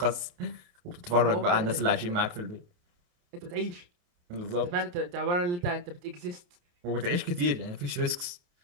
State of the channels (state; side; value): late; left; 28 ms